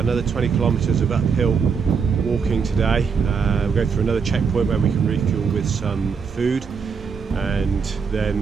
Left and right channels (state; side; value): quieter; left; 5.9 dB